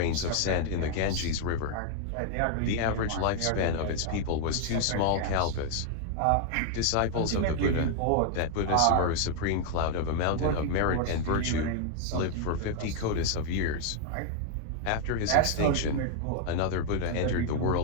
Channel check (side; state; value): both; different; correlation 0.00